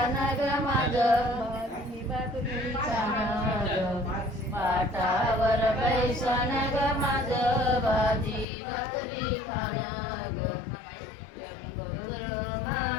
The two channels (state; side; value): drops out; right; at 8.5 s